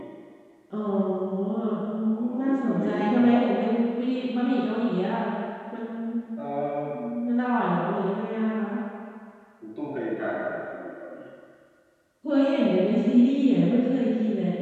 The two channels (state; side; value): identical; both; correlation 1.00